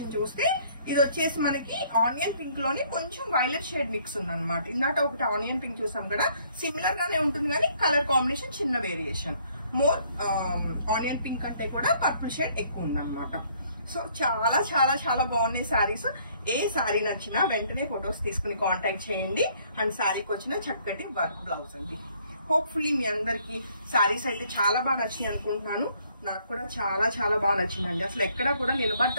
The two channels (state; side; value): inverted; both; correlation -0.63